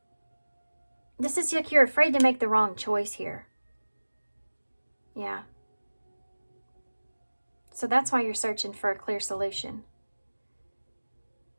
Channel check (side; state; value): both; inverted; correlation -1.00